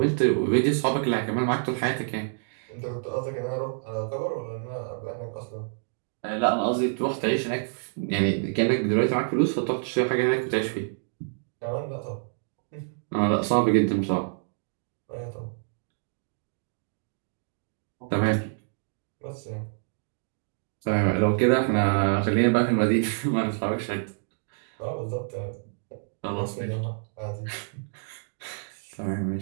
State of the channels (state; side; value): silent; left; digital silence